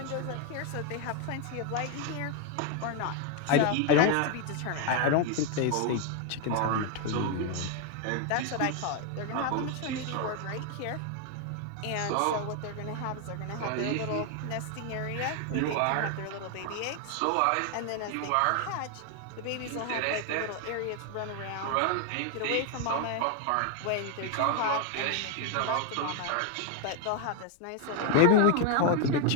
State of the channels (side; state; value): both; different; correlation 0.00